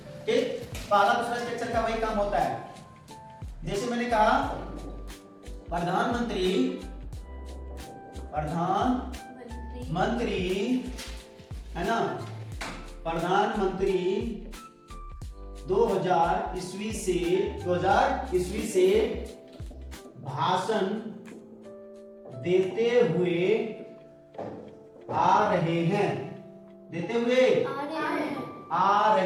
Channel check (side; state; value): both; identical; correlation 1.00